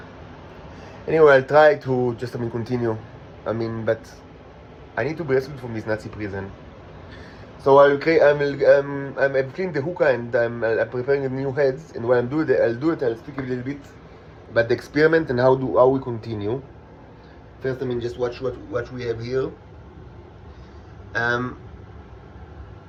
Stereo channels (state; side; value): identical; both; correlation 1.00